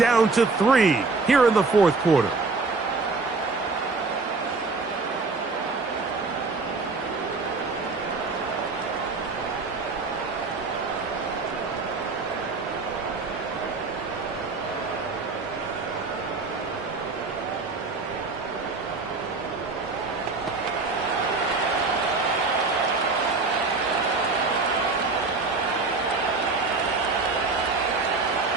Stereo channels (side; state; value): left; quieter; 3.9 dB